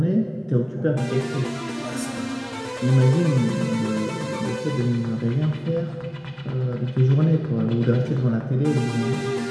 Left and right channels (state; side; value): identical; both; correlation 1.00